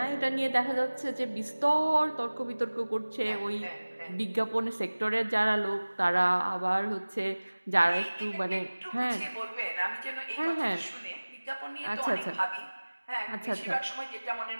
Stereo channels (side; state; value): both; inverted; correlation -1.00